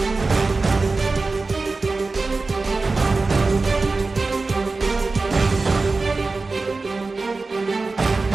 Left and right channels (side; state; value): left; quieter; 3.8 dB